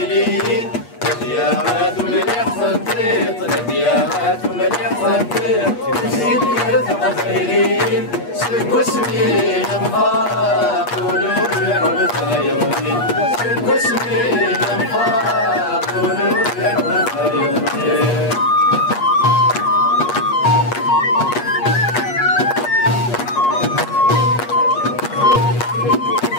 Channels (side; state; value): right; late; 8.4 ms